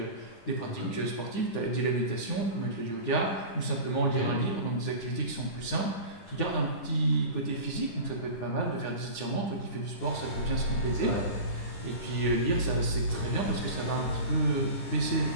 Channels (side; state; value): right; late; 9.8 ms